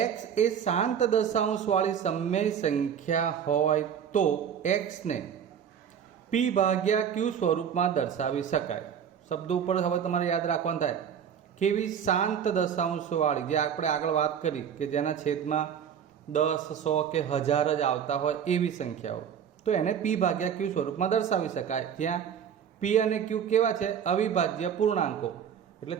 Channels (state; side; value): quieter; left; 8.2 dB